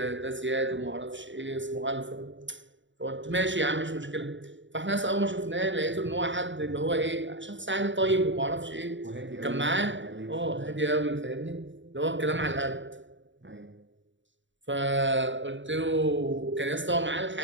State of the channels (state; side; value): late; left; 0.54 ms